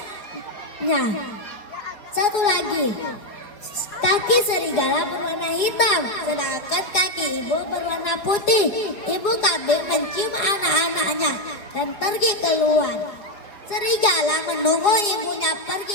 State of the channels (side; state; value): right; late; 4.8 ms